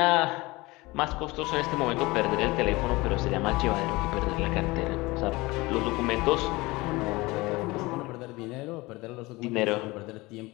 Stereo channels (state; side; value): quieter; right; 22.0 dB